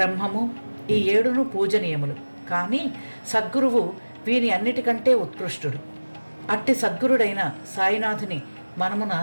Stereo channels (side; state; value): both; inverted; correlation -1.00